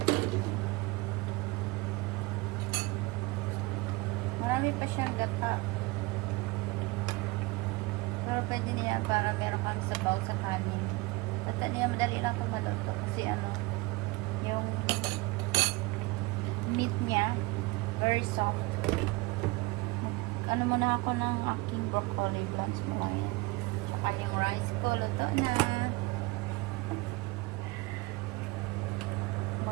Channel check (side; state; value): left; quieter; 23.3 dB